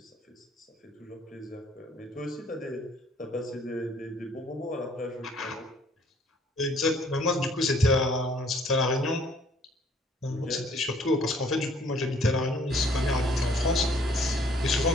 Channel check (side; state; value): both; normal; correlation 0.60